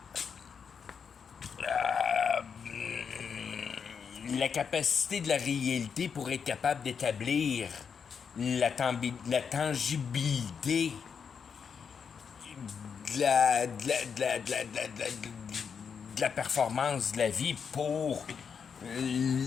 la capacité de la réalité pour être capable d'établir la tangibilité de la performance de la vie pour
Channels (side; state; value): right; quieter; 6.5 dB